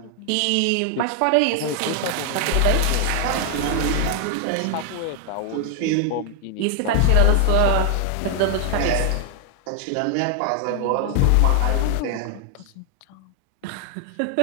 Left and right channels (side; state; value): both; different; correlation 0.00